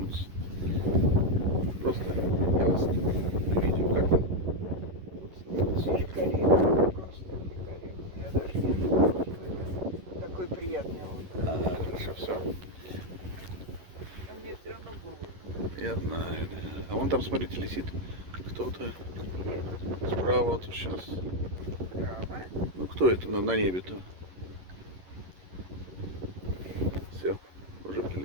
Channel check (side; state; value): left; late; 11 ms